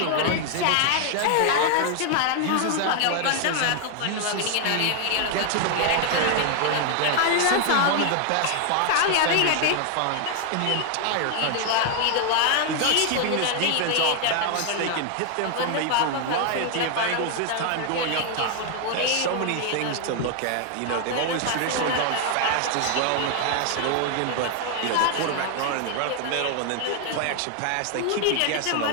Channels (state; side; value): different; both; correlation 0.00